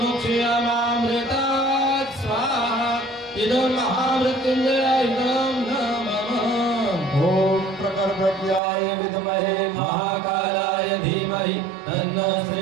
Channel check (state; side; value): drops out; left; at 8.6 s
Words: स्वाहा इदं महामृत्युंजय इदं नमः। ओम प्रकटव्याय विद्महे महाकालाय धीमहि तन्नो